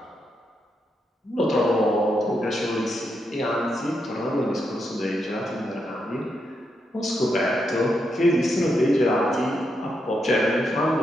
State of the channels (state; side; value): normal; both; correlation 0.82